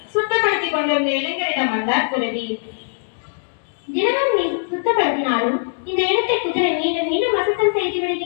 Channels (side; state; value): right; silent; digital silence